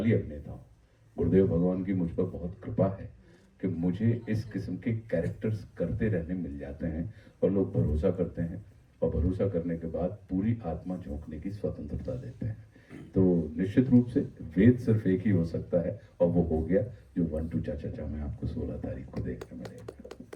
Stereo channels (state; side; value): identical; both; correlation 1.00